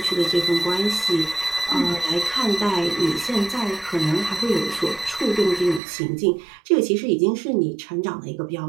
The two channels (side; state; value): left; drops out; at 5.8 s